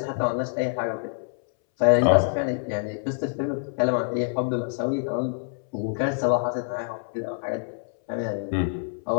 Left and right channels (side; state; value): right; silent; 61 dB below the other